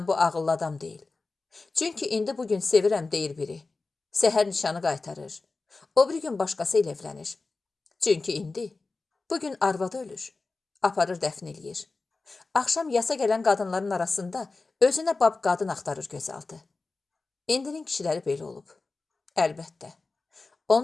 bu ağıllı adam deyil. Çünki indi bugün sevirəm deyir biri. Səhər nişanı qaytarır. O bir gün başqası ilə evlənir. Çünki indi, bugün arvadı ölür. Aparır dəfn eləyir. Axşam yasa gələn qadınların arasında özünə bab qadın axtarır gözaltı. İndinin kişiləri belə olub. Əlbəttə.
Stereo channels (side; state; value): right; quieter; 3.8 dB